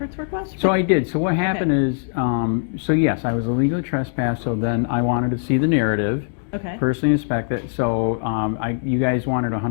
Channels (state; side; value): silent; right; 65 dB below the other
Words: request? So I did. So what happened is, so yes, I was illegally trespassed, so then I wanted to see the narrative. Okay. Personally inspect it. So you guys wanted